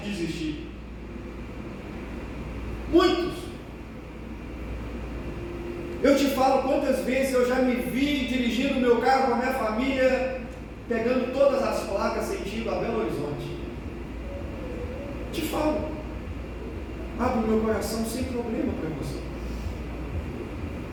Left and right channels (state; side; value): identical; both; correlation 1.00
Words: de desistir. Muitos. Eu te falo quantas vezes eu já me vi dirigindo o meu carro com a minha família, pegando todas as placas sentido a Belo Horizonte. Te falo, abro meu coração sem problema para você.